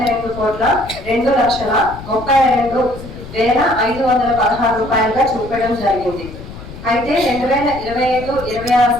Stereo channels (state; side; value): noise; left; rumble, 14 dB below the sound